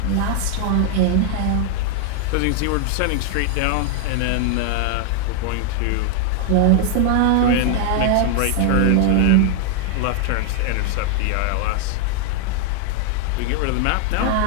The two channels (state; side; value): different; both; correlation 0.00